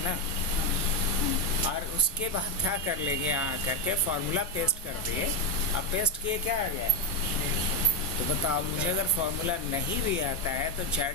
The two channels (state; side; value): normal; both; correlation 0.06